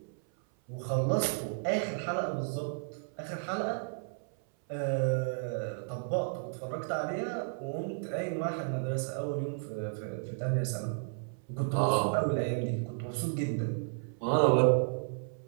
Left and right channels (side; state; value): left; silent; 56 dB below the other